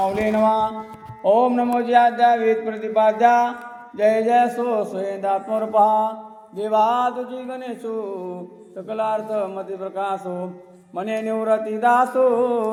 नमः. ओम नमो ज्याद्या वेद प्रतिपाद्या, जय जय सो स्वयंदात्मरूपा, देवा तुझी गणेशो सकलार्थ मती प्रकाशो, मने निवृत्ती दासो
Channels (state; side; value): identical; both; correlation 1.00